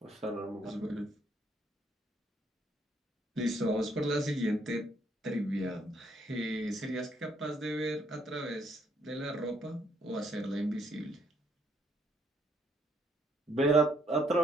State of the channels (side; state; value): both; normal; correlation 0.69